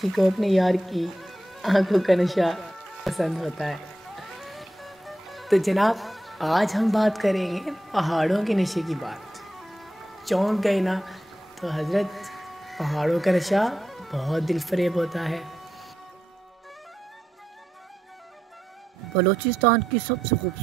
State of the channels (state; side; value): normal; both; correlation 0.86